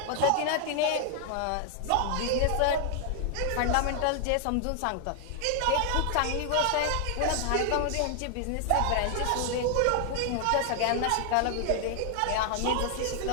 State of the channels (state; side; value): different; both; correlation 0.00